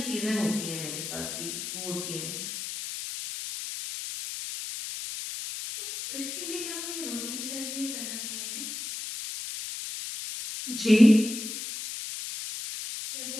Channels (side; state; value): left; noise; hiss, 6 dB below the sound